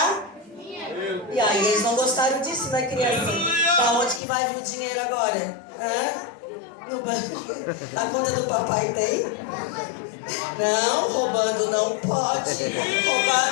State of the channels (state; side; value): drops out; right; at 4.2 s